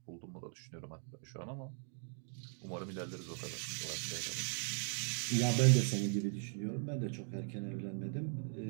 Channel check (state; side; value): silent; left; 52 dB below the other